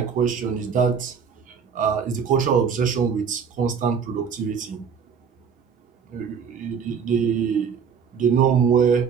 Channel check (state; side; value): quieter; left; 6.6 dB